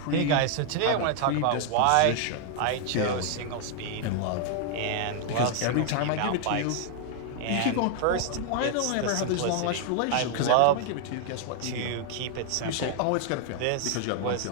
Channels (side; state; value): both; different; correlation 0.00